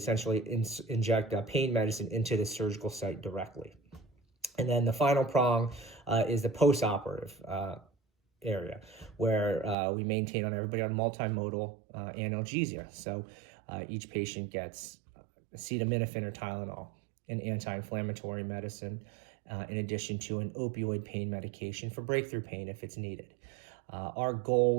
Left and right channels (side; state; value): left; drops out; at 9.8 s